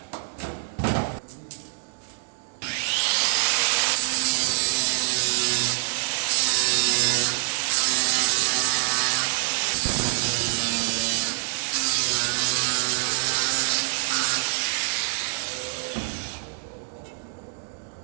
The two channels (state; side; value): silent; left; digital silence